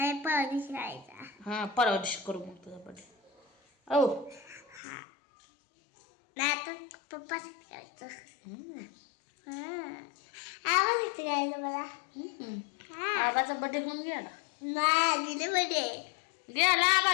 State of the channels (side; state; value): right; drops out; at 4.8 s